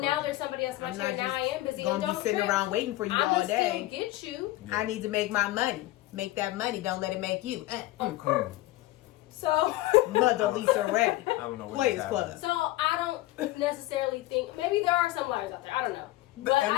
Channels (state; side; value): quieter; right; 17.3 dB